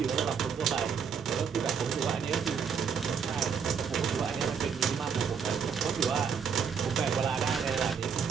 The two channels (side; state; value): left; quieter; 6.6 dB